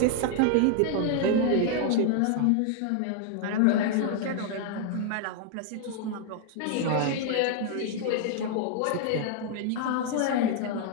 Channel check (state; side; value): different; both; correlation 0.00